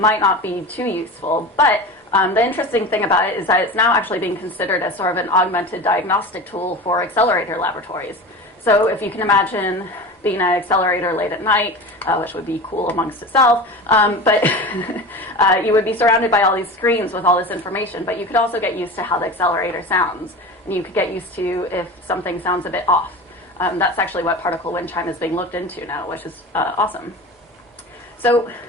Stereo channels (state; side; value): normal; both; correlation 0.31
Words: not be too useful. But the interesting thing about it is that it's now actually being considered as sort of an augmented diagnostic tool for accelerator laboratories. So if you can imagine being an accelerator late at night, which would be cool amongst itself, but you would be surrounded by all these screens with all this information, but you could also get used to how the accelerator sounds, and you could get used to if something sounds a bit off. That's actually what particle wind chime is being looked into now, which is awesome. So